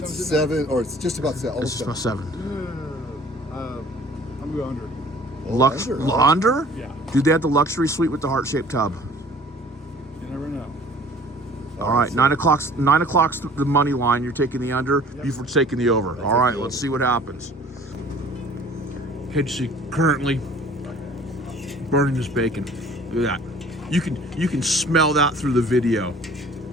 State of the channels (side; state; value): both; normal; correlation 0.50